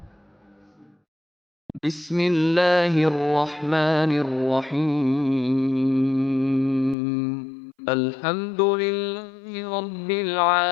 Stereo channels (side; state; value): right; drops out; at 7.0 s